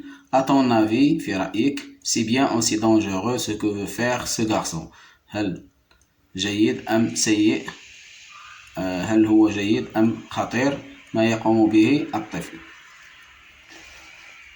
À ton avis، في رأيك، c'est bien aussi dangereux ce que veut faire ce garçon. هل جيد أم سيء؟ هل هو جيد أم خطير ما يقوم به الطفل؟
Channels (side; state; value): both; identical; correlation 1.00